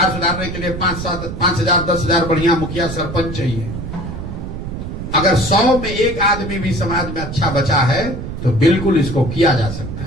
सुधारने के लिए 5,000 10,000 बढ़िया मुखिया सरपंच चाहिए। अगर 100 में 1 आदमी भी समाज में अच्छा बचा है तो बिल्कुल इसको किया जा सकता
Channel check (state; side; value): noise; right; rumble, 7 dB below the sound